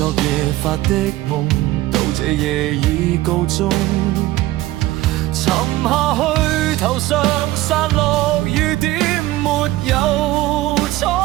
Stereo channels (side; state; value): left; quieter; 16.9 dB